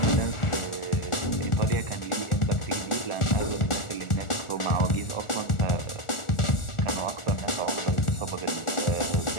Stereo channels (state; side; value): late; right; 1.4 ms